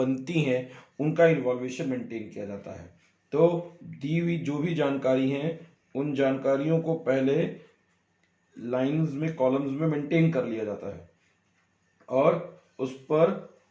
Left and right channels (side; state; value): both; identical; correlation 1.00